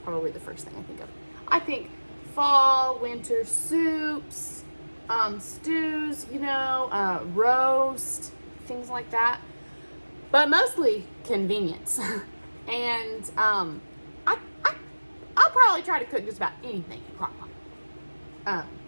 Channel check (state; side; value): inverted; both; correlation -1.00